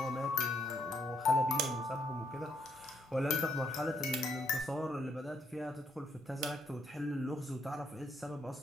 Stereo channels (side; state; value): both; normal; correlation 0.73